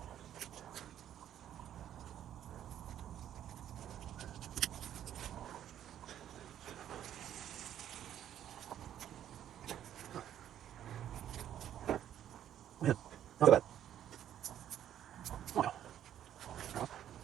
Man, not bad. Oh, yeah.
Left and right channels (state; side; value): quieter; left; 10.8 dB